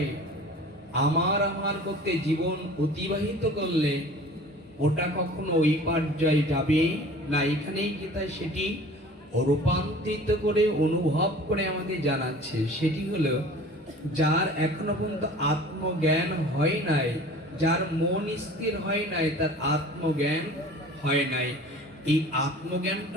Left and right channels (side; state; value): both; normal; correlation 0.44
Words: আমার আমার করতে জীবন অতিবাহিত করলে ওটা কখনো ওই পর্যায়ে যাবে না। এখানেই গীতায় সেটি রূপান্তরিত করে অনুভব করে আমাদের জানাচ্ছে। সেটি হলো যার এখনো পর্যন্ত আত্মজ্ঞান হয় নাই, যার মন স্থির হয় নাই, তার আত্মজ্ঞান হয় নাই। এই